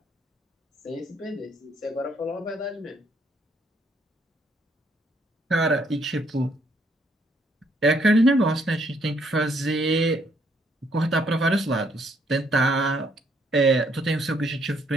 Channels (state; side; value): normal; both; correlation 0.69